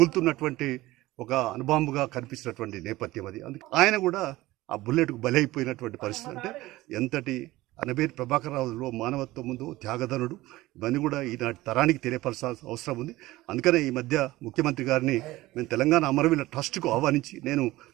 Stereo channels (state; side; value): quieter; left; 18.0 dB